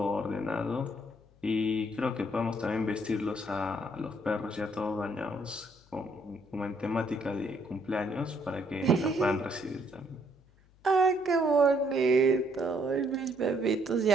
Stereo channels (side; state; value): left; noise; hum, 29 dB below the sound